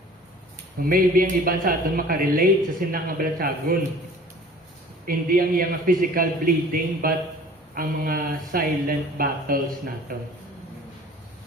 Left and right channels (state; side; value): normal; both; correlation 0.47